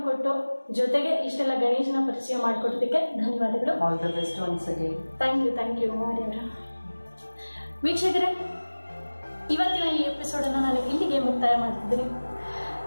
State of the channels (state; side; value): inverted; both; correlation -1.00